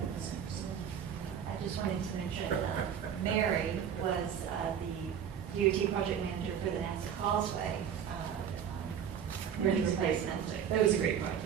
I just wanted to mention, Mary was the DOT project manager for the NASA Causeway bridge replacement. That was a great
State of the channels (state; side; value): quieter; left; 8.5 dB